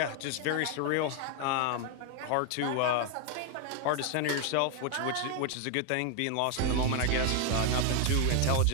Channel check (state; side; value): different; both; correlation 0.01